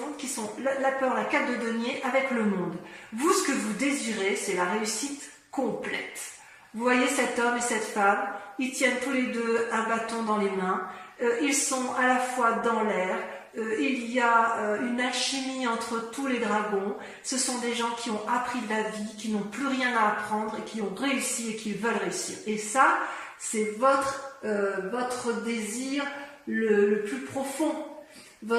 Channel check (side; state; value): both; identical; correlation 1.00